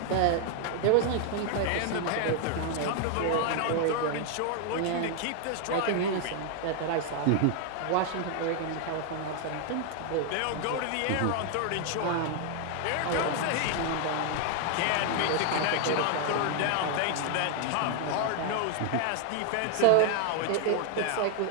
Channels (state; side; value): different; both; correlation 0.00